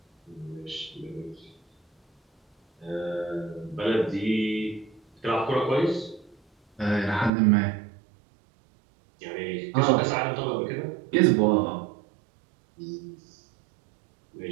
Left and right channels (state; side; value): drops out; left; at 7.3 s